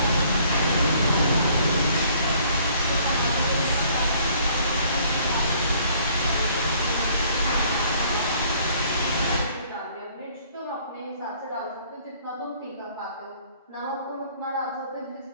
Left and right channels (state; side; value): inverted; both; correlation -0.60